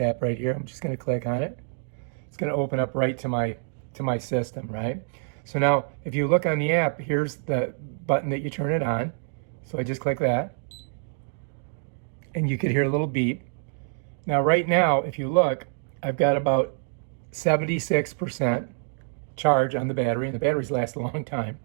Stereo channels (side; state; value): left; silent; digital silence